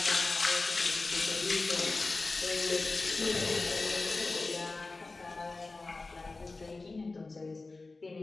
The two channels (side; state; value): right; quieter; 3.5 dB